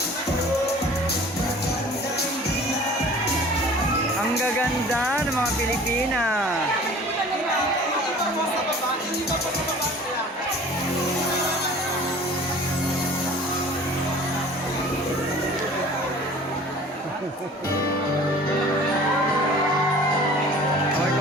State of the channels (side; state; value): both; normal; correlation 0.46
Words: Ang gaganda ng mga Pilipina.